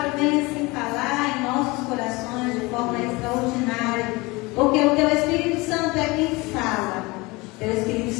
venha assim falar em nossos corações de forma extraordinária, porque o Teu Espírito Santo é quem fala, o Teu Espírito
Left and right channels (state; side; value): quieter; right; 23.7 dB